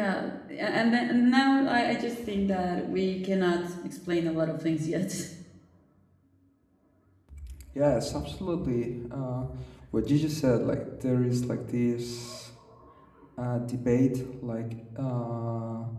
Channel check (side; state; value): both; identical; correlation 1.00